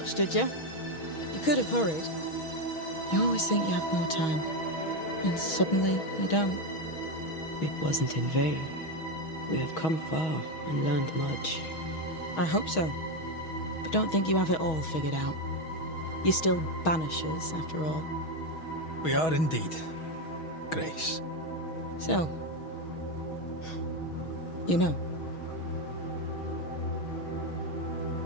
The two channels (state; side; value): late; right; 6.3 ms